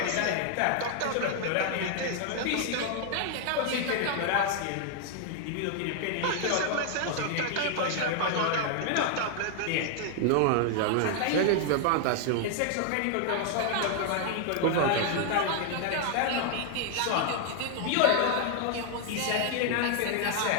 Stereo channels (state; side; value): different; both; correlation 0.00